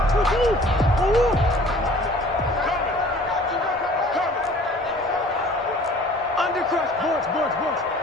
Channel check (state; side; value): normal; both; correlation 0.50